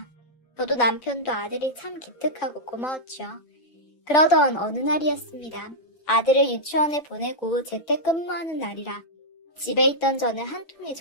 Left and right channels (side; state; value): right; late; 5.9 ms